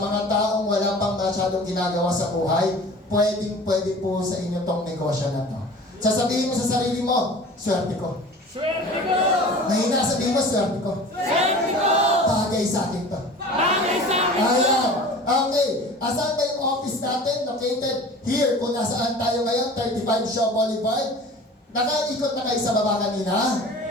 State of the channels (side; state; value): both; normal; correlation 0.41